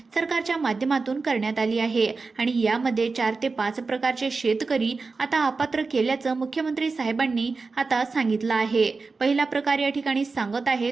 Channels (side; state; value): left; quieter; 4.2 dB